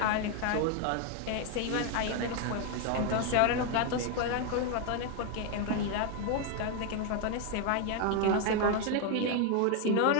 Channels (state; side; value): different; both; correlation 0.01